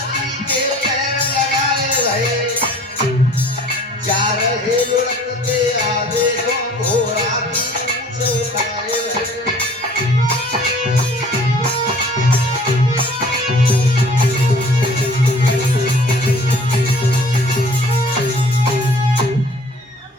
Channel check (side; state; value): both; normal; correlation 0.50